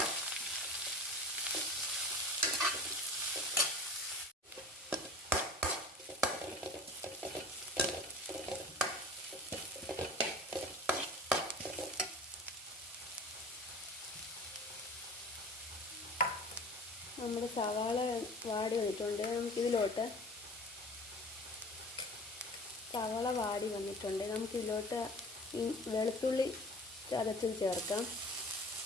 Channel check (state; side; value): normal; both; correlation 0.41